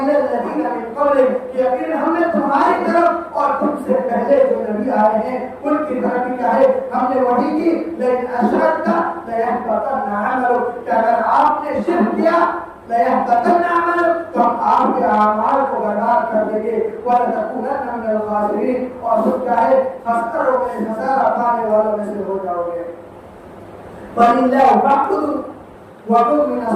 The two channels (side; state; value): both; identical; correlation 1.00